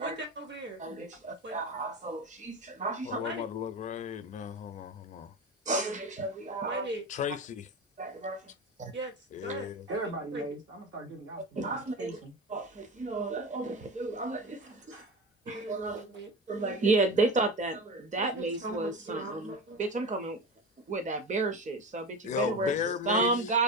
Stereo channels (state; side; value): normal; both; correlation 0.26